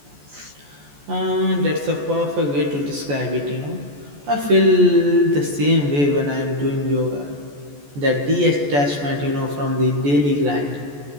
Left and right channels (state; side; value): late; left; 14 ms